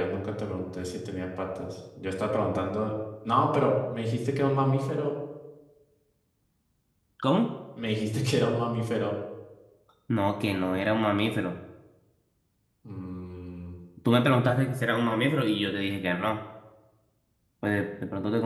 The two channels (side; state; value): both; identical; correlation 1.00